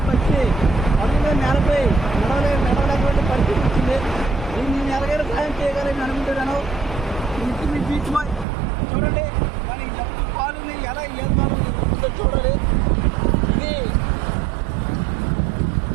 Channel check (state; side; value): drops out; left; at 8.5 s